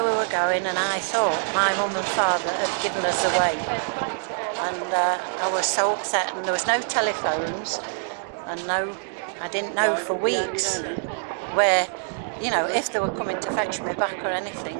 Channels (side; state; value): left; silent; digital silence